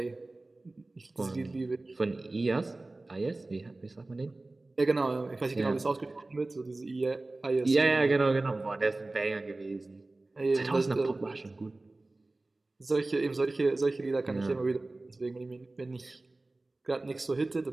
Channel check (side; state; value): left; quieter; 3.0 dB